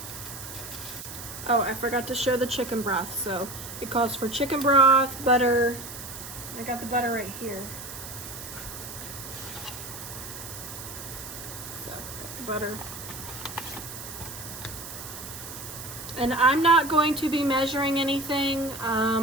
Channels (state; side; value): noise; right; hiss, 10 dB below the sound